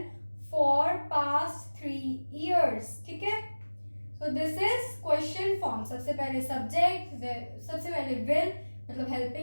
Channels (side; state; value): both; inverted; correlation -1.00